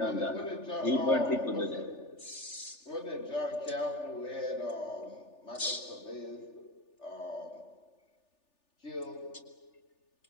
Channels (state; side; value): late; right; 3.4 ms